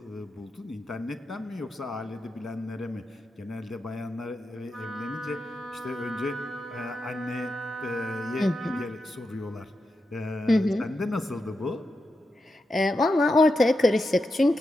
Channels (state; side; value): normal; both; correlation 0.88